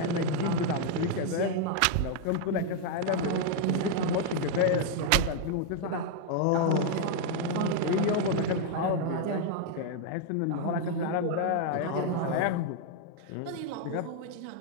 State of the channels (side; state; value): both; different; correlation 0.00